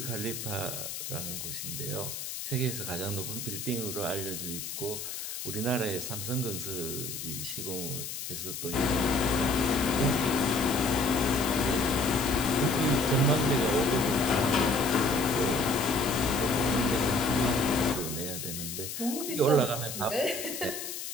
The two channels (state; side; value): noise; left; hiss, 7 dB below the sound